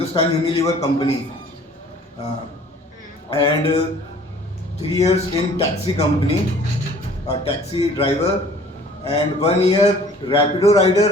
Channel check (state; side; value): normal; both; correlation 0.52